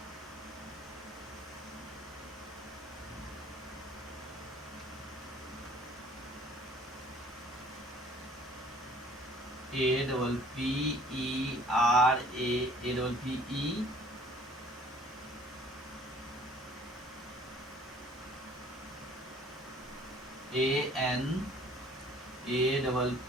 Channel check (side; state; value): both; normal; correlation 0.54